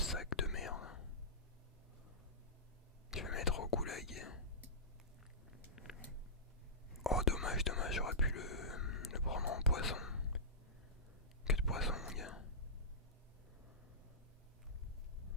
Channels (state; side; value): normal; both; correlation -0.17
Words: de merde? Je vais mettre au goulag. Oh dommage, j'aurais pu le prendre en poisson. Que de poisson mon gars.